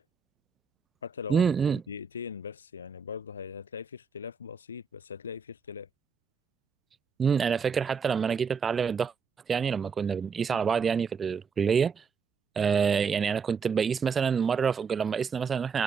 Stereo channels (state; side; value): quieter; left; 5.9 dB